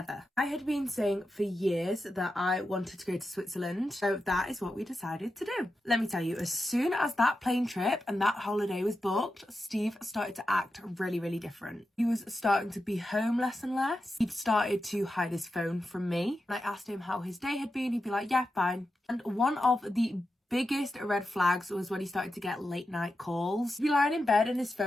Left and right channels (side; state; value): both; normal; correlation 0.90